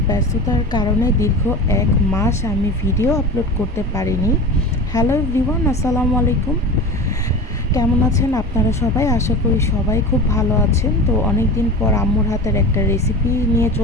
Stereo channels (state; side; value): normal; both; correlation 0.31